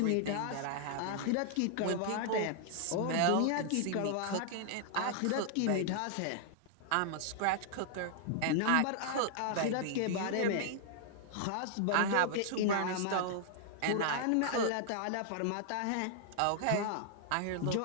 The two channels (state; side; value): different; both; correlation -0.01